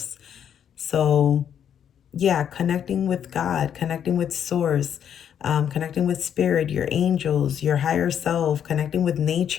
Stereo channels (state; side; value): quieter; right; 8.9 dB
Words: So yeah, connecting with God, connecting with source, connecting with spirit, your angels, your higher self, connecting with